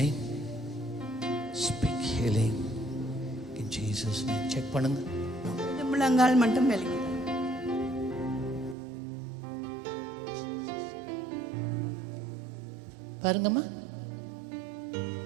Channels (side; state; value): left; drops out; at 8.8 s